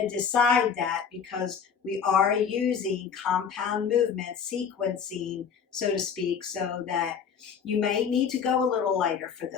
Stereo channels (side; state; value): right; quieter; 6.9 dB